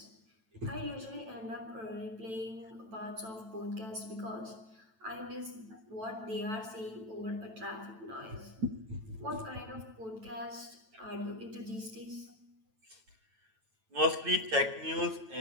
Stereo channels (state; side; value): late; left; 9.1 ms